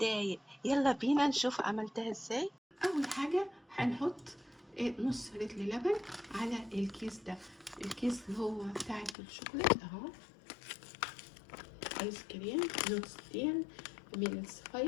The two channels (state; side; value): drops out; right; at 9.2 s